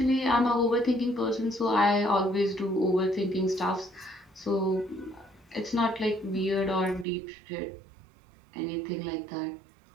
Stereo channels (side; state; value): left; drops out; at 7.1 s